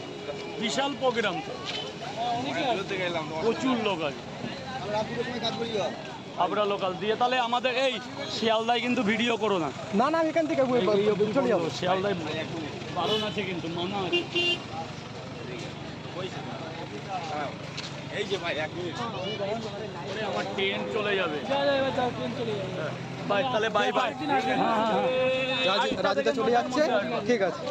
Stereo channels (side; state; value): both; identical; correlation 1.00